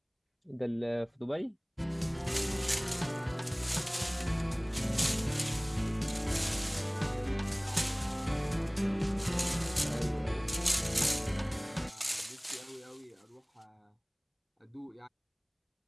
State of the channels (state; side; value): identical; both; correlation 1.00